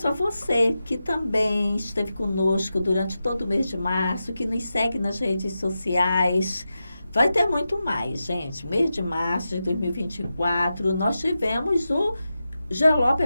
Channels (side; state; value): both; inverted; correlation -0.91